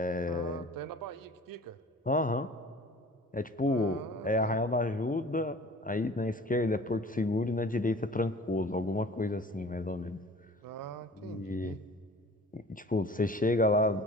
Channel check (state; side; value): normal; both; correlation 0.45